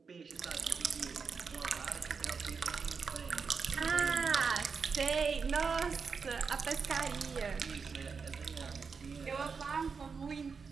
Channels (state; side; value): quieter; left; 5.4 dB